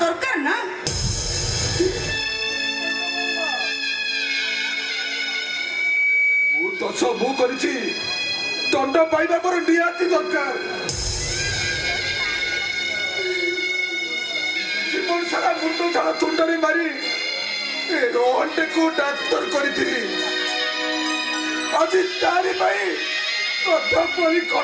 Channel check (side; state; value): both; identical; correlation 1.00